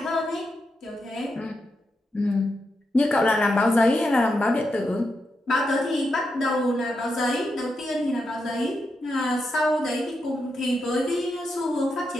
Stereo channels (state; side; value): normal; both; correlation 0.85